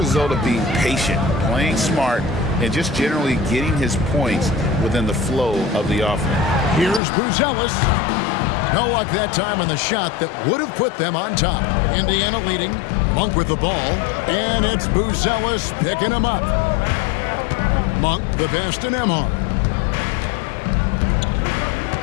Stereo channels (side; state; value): right; drops out; at 7.0 s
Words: of being patient, playing smart, and just generally getting his points within the flow of the offense. Here's Buzelis. No luck that time on the shot that would have put them on top. Indiana leading. Monk with the ball. And it's Buzelis picking him up. Monk the pass to Nembhard.